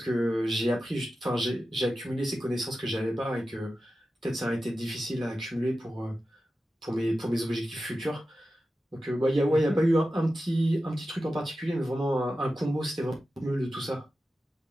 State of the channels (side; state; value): both; normal; correlation 0.92